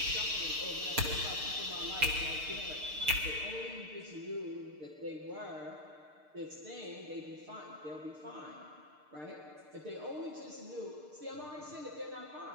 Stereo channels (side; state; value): left; late; 6.6 ms